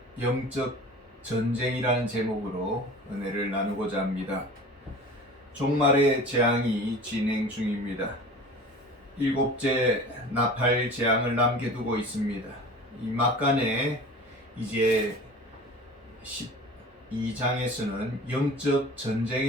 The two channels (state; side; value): normal; both; correlation 0.39